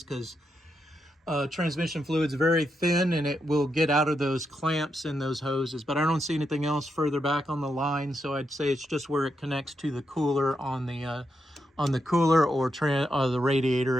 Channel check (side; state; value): both; normal; correlation 0.83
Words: because transmission fluid's very thin and it will get out of those clamps in those hoses. But I don't see anything else further back on the line, so I'd say it's just where it connects to the cooler on the cooler or the radiator